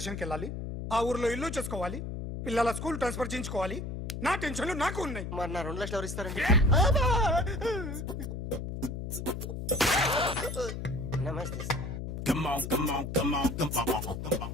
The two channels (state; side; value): noise; left; hum, 6 dB below the sound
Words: వెళ్ళాలి, ఆ ఊర్లో ఇల్లు చేసుకోవాలి, పిల్లల స్కూల్ ట్రాన్స్ఫర్ చేయించుకోవాలి. నా టెన్షన్లు నాకు ఉన్నాయి. మరి నా 2 లక్షలు ఎవరు ఇస్తారండి? నమస్తే సార్.